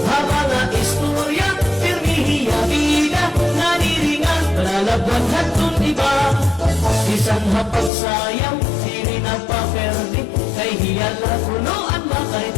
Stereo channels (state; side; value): drops out; right; at 7.9 s